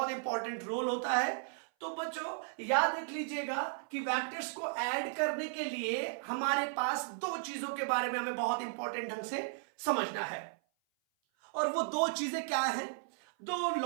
इंपॉर्टेंट रोल होता है। तो बच्चों याद रख लीजिएगा कि वेक्टर्स को ऐड करने के लिए हमारे पास दो चीजों के बारे में हमें बहुत इंपॉर्टेंट ढंग से समझना है, और वो दो चीजें क्या हैं? दो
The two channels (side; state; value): left; silent; 54 dB below the other